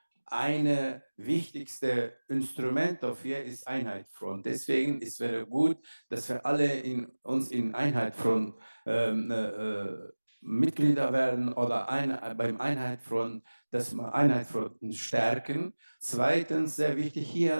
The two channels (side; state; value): both; inverted; correlation -1.00